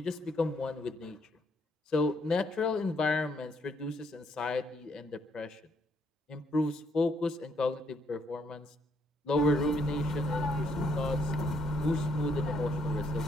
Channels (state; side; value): normal; both; correlation 0.71